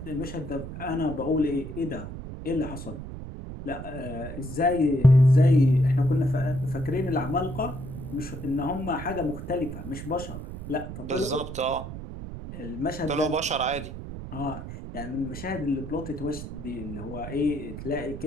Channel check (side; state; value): right; noise; rumble, 9 dB below the sound